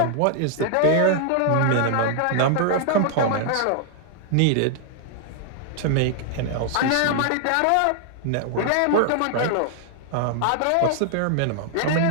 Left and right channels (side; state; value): both; different; correlation 0.00